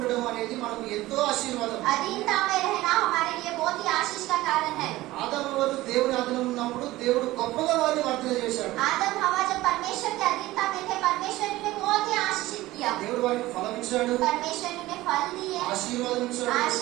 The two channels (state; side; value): quieter; left; 17.5 dB